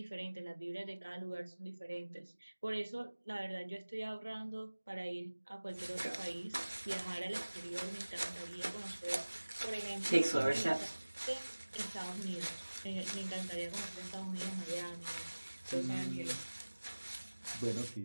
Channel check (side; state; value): both; inverted; correlation -1.00